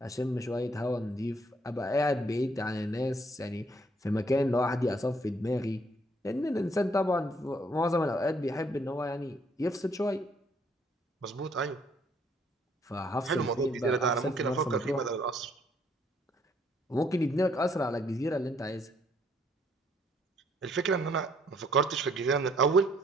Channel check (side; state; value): both; normal; correlation 0.66